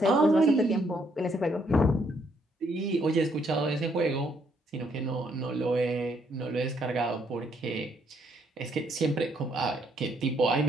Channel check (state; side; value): normal; both; correlation 0.71